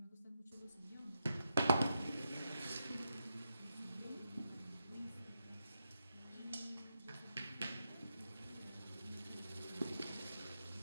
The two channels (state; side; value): inverted; both; correlation -0.85